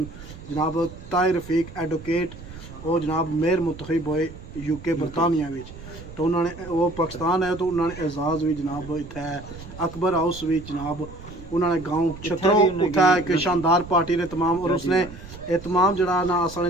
جناب طاہر رفیق ایڈوکیٹ وہ جناب میئر منتخب ہوئے یو کے برطانیہ وچ تو انہوں نے وہ پاکستان ہے تو انہوں نے اعزاز بھی جناب اتنے اکبر ہاؤس بھی جناب انہوں نے گاؤں چھترو اتنا ایک شاندار پارٹی نے تمام اور اس نے تمام جڑا نا اصل نے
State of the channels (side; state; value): right; noise; rumble, 15 dB below the sound